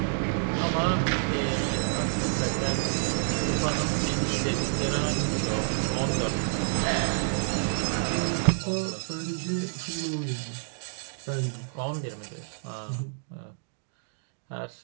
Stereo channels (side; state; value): left; silent; digital silence